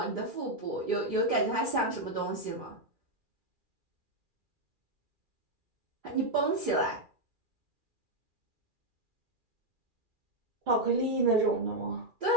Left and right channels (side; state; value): left; late; 2.4 ms